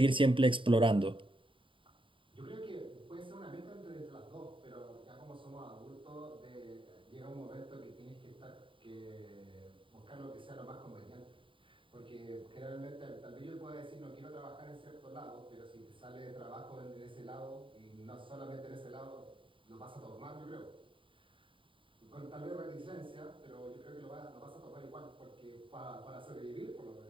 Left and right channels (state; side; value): late; left; 0.25 ms